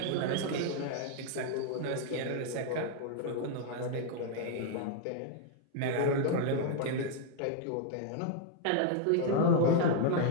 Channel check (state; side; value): different; both; correlation 0.00